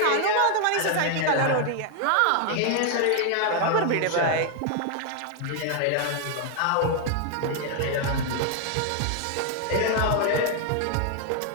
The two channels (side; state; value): both; different; correlation 0.00